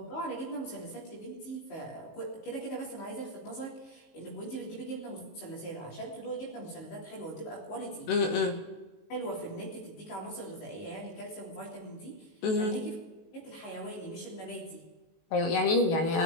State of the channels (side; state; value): right; late; 19 ms